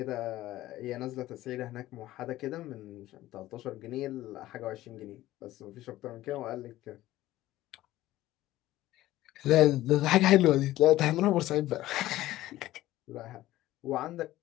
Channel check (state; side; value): quieter; right; 15.6 dB